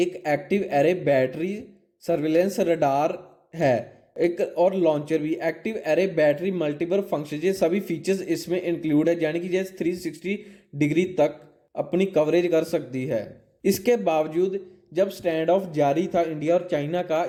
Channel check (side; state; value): both; identical; correlation 1.00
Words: active array battery surveillance radar है, एक और लॉन्चर भी। Active array battery multiple function, ये सभी फीचर्स इसमें इंक्लूड है, यानी कि जैसे 360 डिग्री तक अपनी कवरेज कर सकती है। इसके बावजूद जब स्टैंड ऑफ जारी था इंडिया और चाइना का,